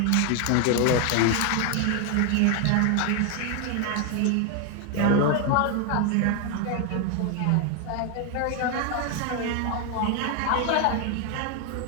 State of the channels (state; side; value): different; both; correlation 0.01